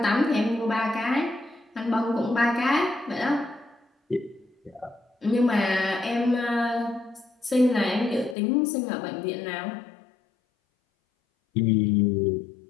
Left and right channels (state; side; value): drops out; right; at 8.3 s